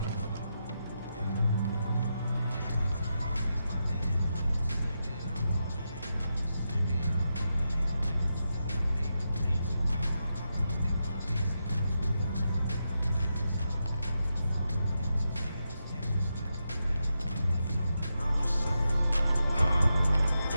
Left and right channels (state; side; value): inverted; both; correlation -0.86